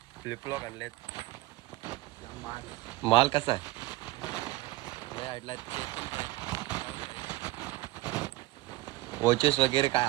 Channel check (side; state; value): left; quieter; 19.1 dB